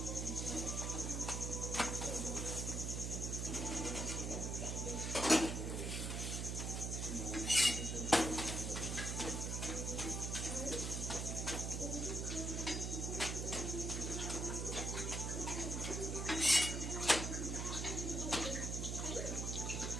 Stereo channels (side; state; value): right; noise; hum, 1 dB below the sound